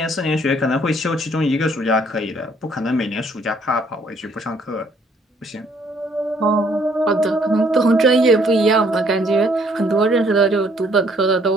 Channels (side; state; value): both; normal; correlation 0.64